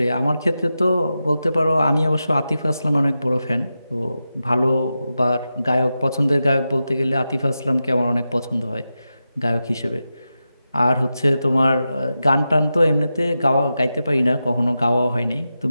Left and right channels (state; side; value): inverted; both; correlation -0.91